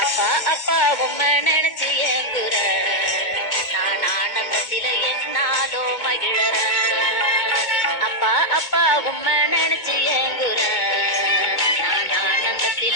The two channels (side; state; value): right; late; 2.2 ms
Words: அப்பா அப்பா உம்மை நினைச்சு ஏங்குற நான் ஆனந்தத்தில என்னாலோ மகிழற அப்பா அப்பா உம்மை நினைச்சு ஏங்குற நான்